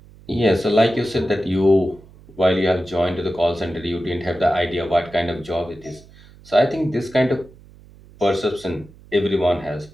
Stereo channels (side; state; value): right; noise; hum, 23 dB below the sound